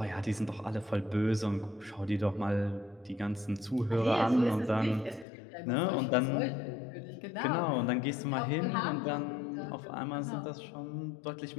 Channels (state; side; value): drops out; right; at 5.2 s